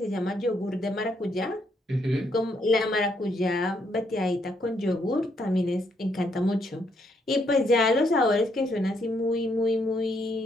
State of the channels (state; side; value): normal; both; correlation 0.74